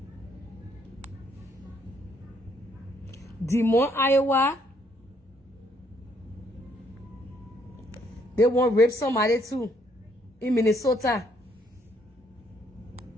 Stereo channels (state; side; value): normal; both; correlation 0.70